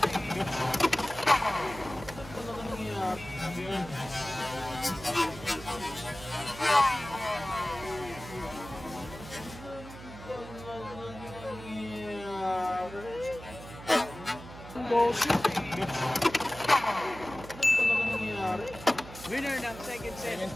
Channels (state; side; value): noise; right; hum, 14 dB below the sound